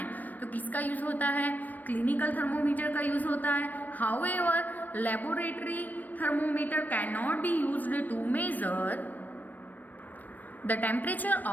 तो किसका यूज होता है, क्लिनिकल थर्मोमीटर का यूज होता है। However laboratory thermometer can not be used to measure the temperature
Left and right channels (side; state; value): right; late; 0.085 ms